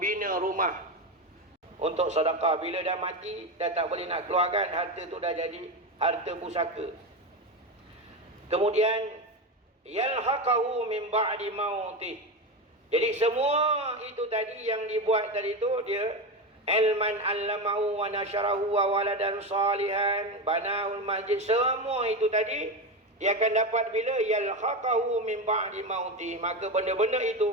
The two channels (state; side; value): normal; both; correlation 0.17